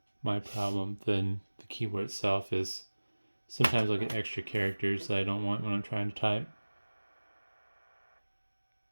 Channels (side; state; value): both; inverted; correlation -1.00